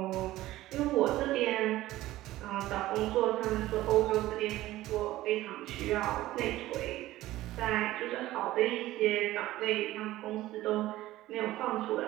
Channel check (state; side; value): quieter; left; 16.0 dB